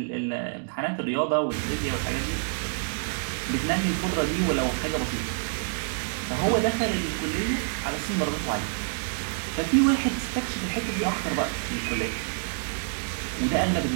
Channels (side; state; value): left; silent; digital silence